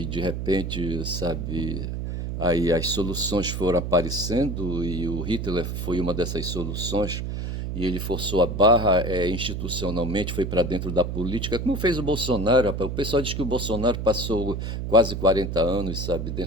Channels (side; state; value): right; noise; hum, 4 dB below the sound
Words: E de repente, sabe, aí as soluções foram aparecendo e o Hitler foi uma dessas soluções e ele forçou a barra institucionalmente, foi para dentro da política, como fez o Bolsonaro. Rapaz. O pessoal diz que o Bolsonaro passou quase 40 anos, sabe,